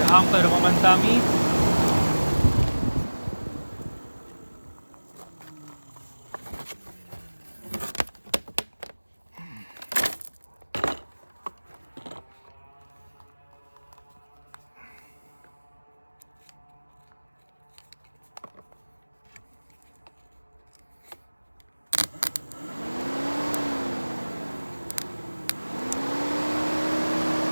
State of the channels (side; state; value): both; inverted; correlation -1.00